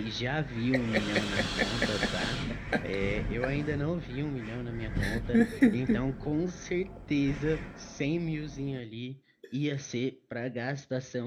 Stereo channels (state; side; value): identical; both; correlation 1.00